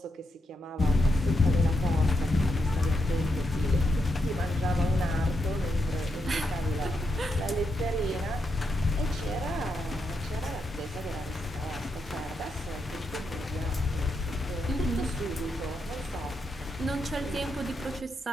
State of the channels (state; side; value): normal; both; correlation 0.83